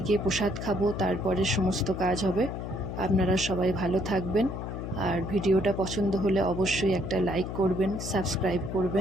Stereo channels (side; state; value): left; noise; hum, 6 dB below the sound